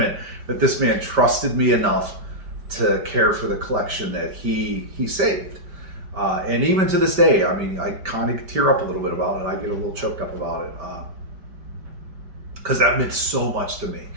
that this man trusted me enough to care for the collection that he saved. And even to this day, I mean, I kind of tear up a little bit about it. I get a little choked up about it, because that meant so much to me,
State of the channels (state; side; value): late; left; 5.1 ms